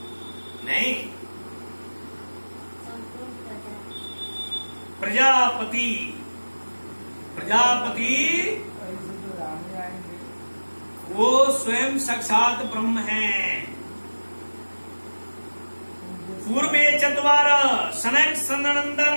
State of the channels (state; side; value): inverted; both; correlation -1.00